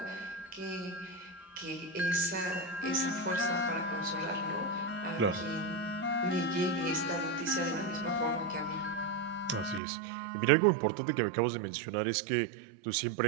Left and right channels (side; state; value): left; drops out; at 9.8 s